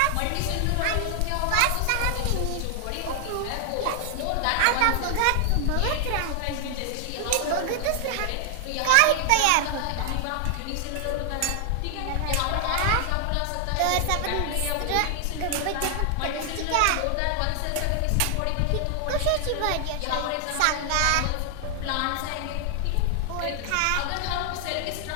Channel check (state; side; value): different; both; correlation 0.00